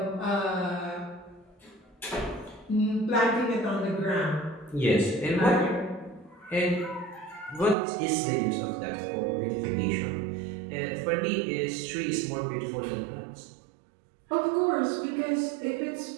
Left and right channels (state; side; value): drops out; left; at 7.8 s